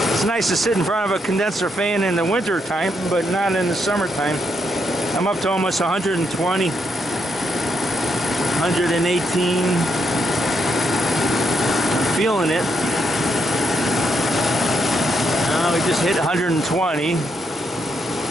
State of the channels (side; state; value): both; normal; correlation 0.78